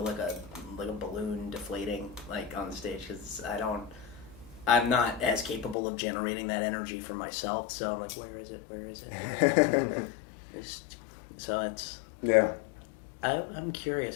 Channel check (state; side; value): drops out; right; at 5.8 s